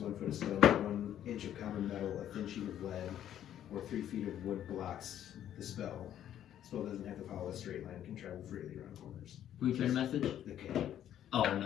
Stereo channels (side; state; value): right; quieter; 10.9 dB